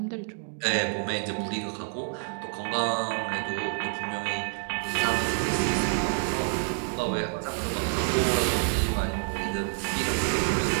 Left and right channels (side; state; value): left; silent; 59 dB below the other